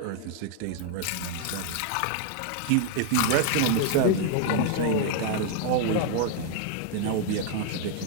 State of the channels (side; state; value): both; different; correlation 0.00